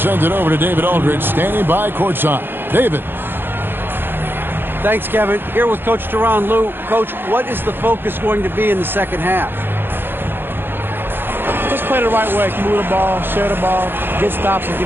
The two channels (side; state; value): left; late; 0.10 ms